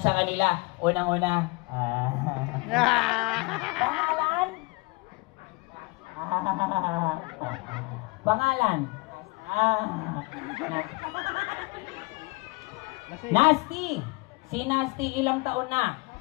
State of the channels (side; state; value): right; quieter; 26.5 dB